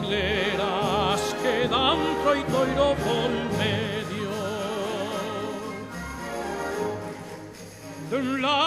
quedan troito y ro por medio. De un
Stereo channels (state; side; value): identical; both; correlation 1.00